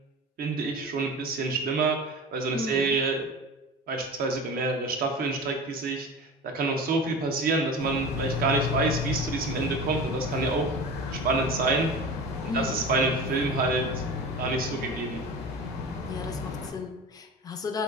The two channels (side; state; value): both; normal; correlation 0.33